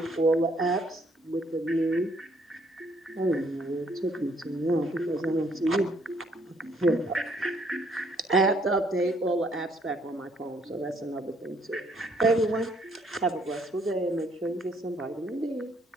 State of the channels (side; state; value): both; normal; correlation 0.67